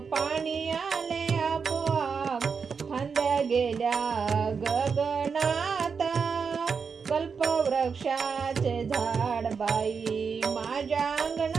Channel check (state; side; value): quieter; left; 5.7 dB